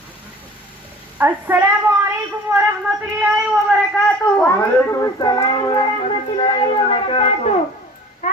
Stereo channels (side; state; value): both; normal; correlation 0.45